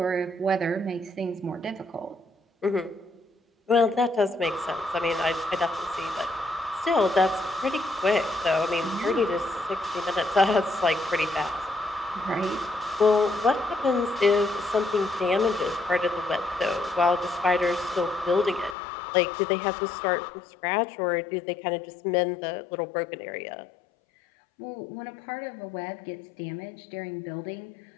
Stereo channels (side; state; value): right; drops out; at 18.8 s